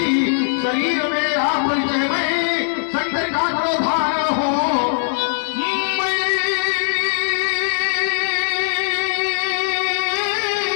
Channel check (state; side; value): silent; right; digital silence